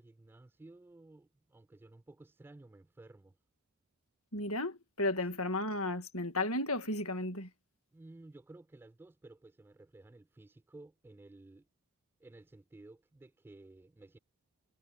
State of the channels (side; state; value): both; normal; correlation -0.08